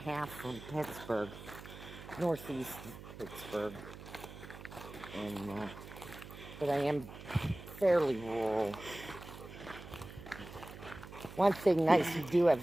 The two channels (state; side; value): noise; right; hum, 14 dB below the sound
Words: from Pittsburgh, northeast of Pittsburgh, and but I am fairly rural. One thing nice, you do